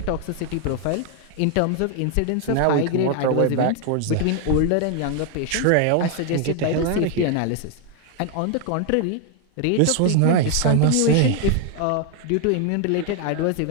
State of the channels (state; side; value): different; both; correlation 0.01